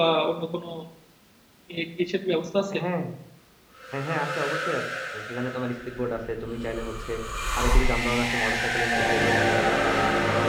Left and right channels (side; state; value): both; identical; correlation 1.00